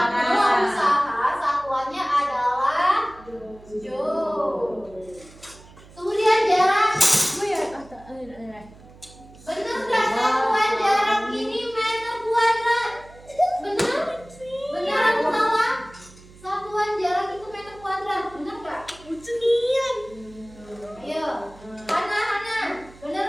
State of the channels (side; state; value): right; noise; hum, 22 dB below the sound